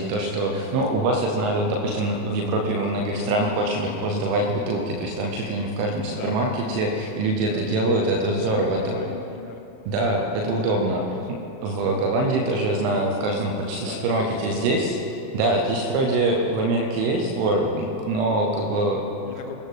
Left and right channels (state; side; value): late; left; 38 ms